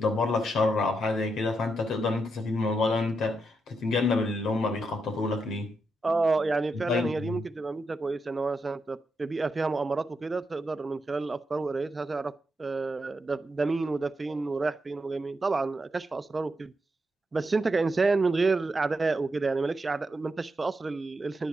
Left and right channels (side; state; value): both; normal; correlation 0.83